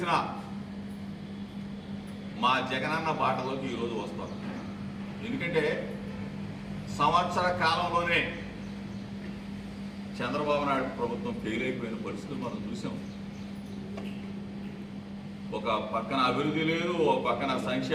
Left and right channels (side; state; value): both; identical; correlation 1.00